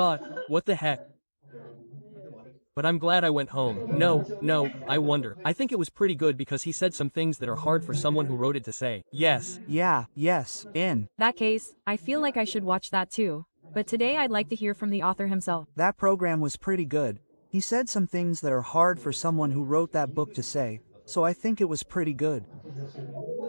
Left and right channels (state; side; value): inverted; both; correlation -1.00